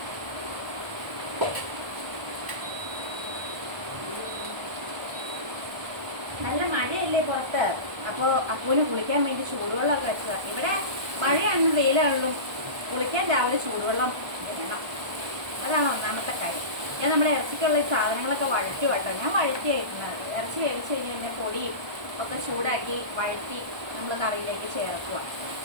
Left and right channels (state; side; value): late; left; 1.2 ms